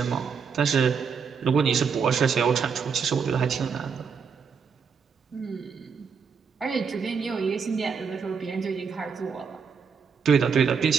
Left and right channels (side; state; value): left; quieter; 6.1 dB